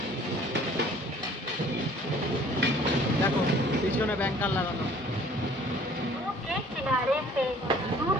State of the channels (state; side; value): normal; both; correlation 0.54